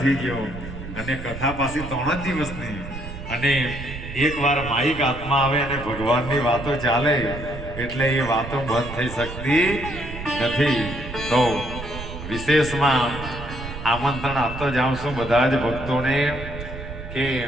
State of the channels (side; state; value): right; noise; rumble, 10 dB below the sound